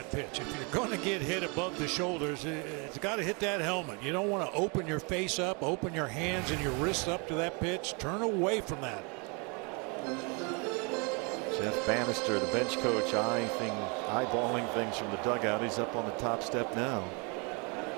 pitch. If you're going to get hit above the shoulders, it's got to hit that helmet. You don't want to open your face up, open your hands and your wrists up to that pitch. Turn away from that. Jeff Bannister, the bench coach, eyeballing things from the dugout. He's up on the top step now.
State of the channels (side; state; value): left; quieter; 32.4 dB